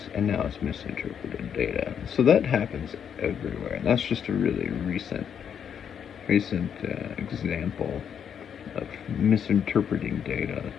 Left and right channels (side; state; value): right; quieter; 8.1 dB